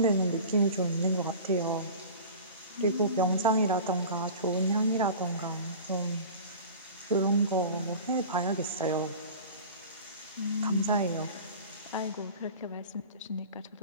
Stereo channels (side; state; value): both; inverted; correlation -0.37